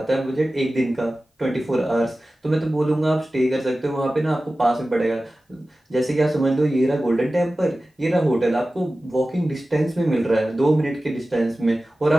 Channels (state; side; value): normal; both; correlation 0.96